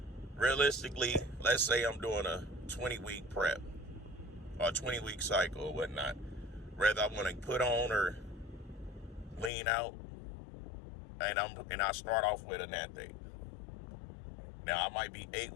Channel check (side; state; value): right; drops out; at 9.5 s